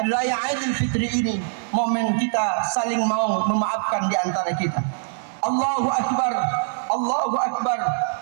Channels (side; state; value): left; silent; digital silence